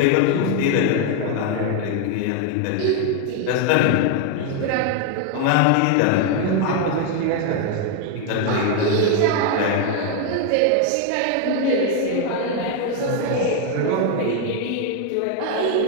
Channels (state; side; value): different; both; correlation 0.01